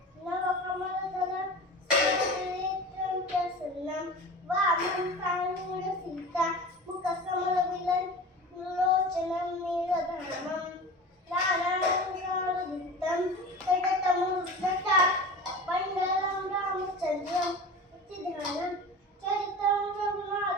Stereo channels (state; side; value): normal; both; correlation 0.34